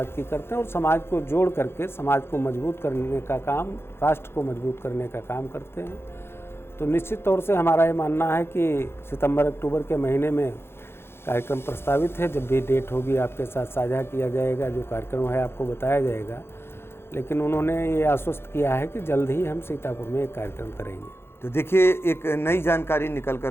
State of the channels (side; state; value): right; late; 0.12 ms